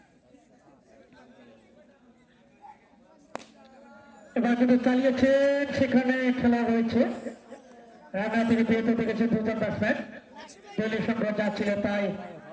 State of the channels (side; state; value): both; identical; correlation 1.00